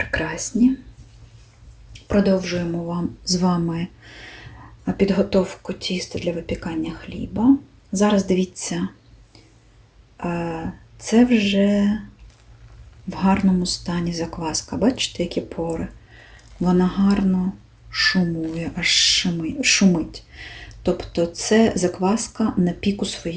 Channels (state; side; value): identical; both; correlation 1.00